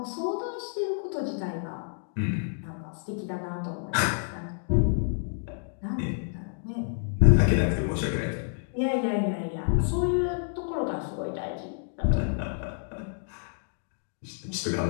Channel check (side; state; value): right; silent; digital silence